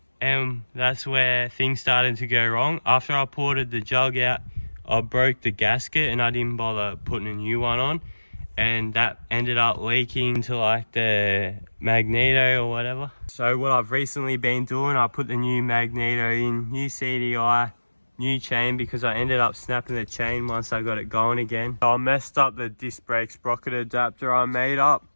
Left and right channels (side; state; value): both; inverted; correlation -1.00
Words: and that's where things started to go wrong. After I ported the jug out, I broke the gasket and I didn't bother putting a new one on, and that ended up leaking to like the magneto or whatever. So what I've recently been doing, I put the new magneto in, new CDI, new chain, because I ended up snapping the chain once I got it going again. So I messed up the disc brake sprocket adapter I made up.